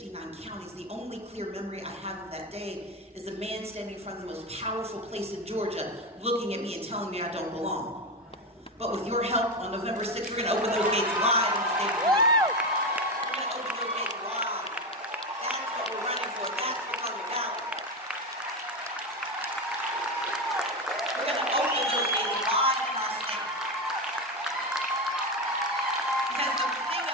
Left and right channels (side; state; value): both; normal; correlation 0.16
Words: counties. The only clear memory I have of that day is a man standing in front of the most powerful place in Georgia looking at me and telling me I don't belong. But with your help, on November 6th, we're going to open those gates wide in the state of Georgia. We're going to open those gates wide. That's what we're running for. That's what's on the ballot. We're going to open those gates wide in our state. Because the thing